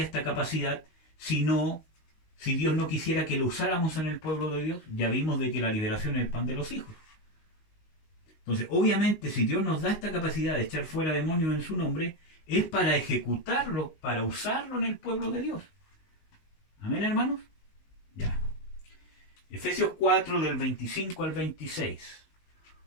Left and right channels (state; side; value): late; right; 19 ms